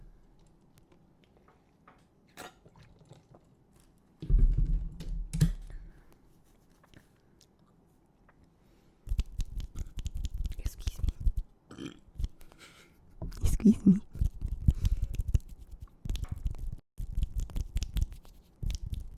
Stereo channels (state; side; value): identical; both; correlation 1.00